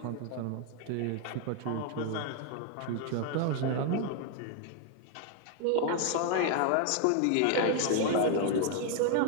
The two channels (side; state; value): both; different; correlation 0.00